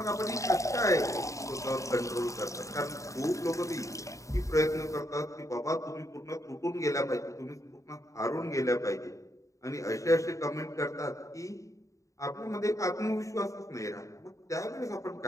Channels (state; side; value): late; right; 0.16 ms